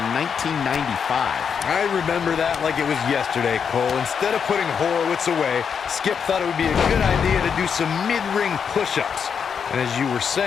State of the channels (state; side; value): quieter; right; 6.8 dB